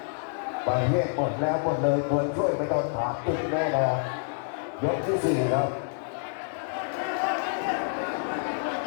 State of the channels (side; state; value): right; silent; digital silence